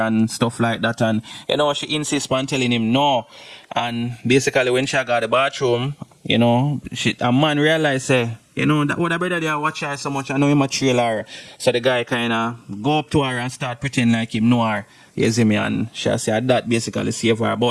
and stuff like that, and, you know, she insists on telling him no. And basically when she got the bathroom, you know, a man realized, say, you know, that would have better they watch her so much, I know him a trail her. So the guy kind of go up to her and start pretending like him know her. You see me, and she said that basically save her.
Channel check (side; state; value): both; identical; correlation 1.00